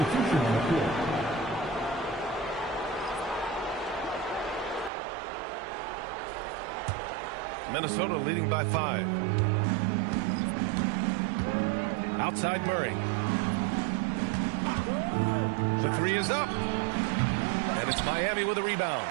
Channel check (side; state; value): left; drops out; at 4.9 s